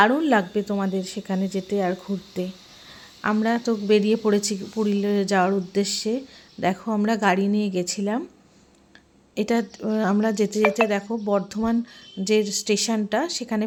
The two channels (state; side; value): identical; both; correlation 1.00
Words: লাগবে তোমাদের সেখানে যেতে আর ঘুরতে। আমরা তো বেরিয়ে পড়েছি পুরুলিয়া যাওয়ার উদ্দেশ্যে। দেখো আমরা গাড়ি নিয়ে গেছিলাম। এটা আমরা যেতে যেতে দেখো বর্ধমান যে স্টেশনটা সেখানে